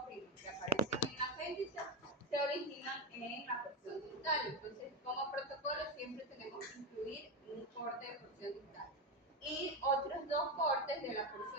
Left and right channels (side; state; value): both; normal; correlation 0.13